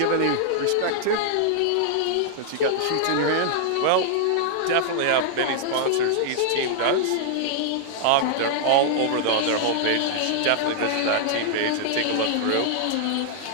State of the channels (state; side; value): different; both; correlation -0.01